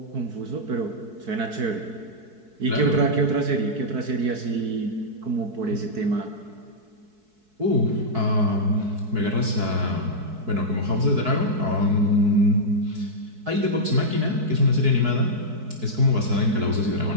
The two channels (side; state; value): left; late; 4.6 ms